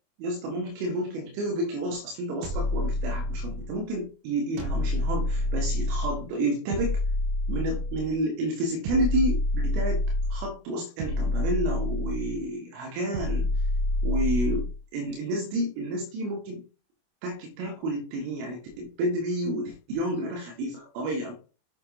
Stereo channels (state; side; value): late; left; 24 ms